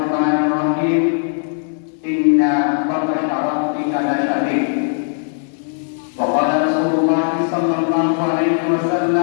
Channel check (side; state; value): right; silent; 67 dB below the other